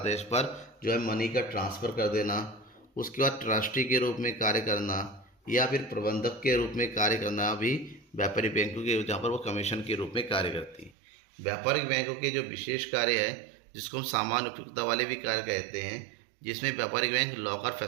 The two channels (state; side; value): drops out; left; at 11.0 s